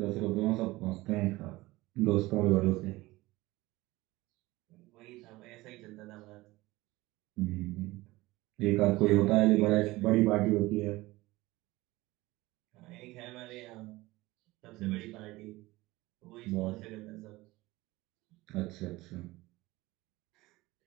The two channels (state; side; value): quieter; left; 19.7 dB